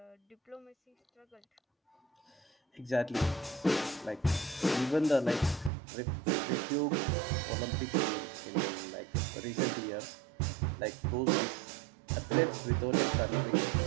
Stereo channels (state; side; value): drops out; left; at 5.7 s